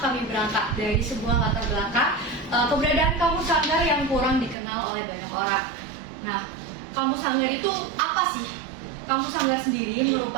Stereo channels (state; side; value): drops out; left; at 4.5 s